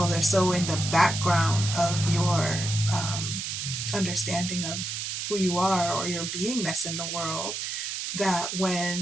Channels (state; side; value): noise; right; hiss, 4 dB below the sound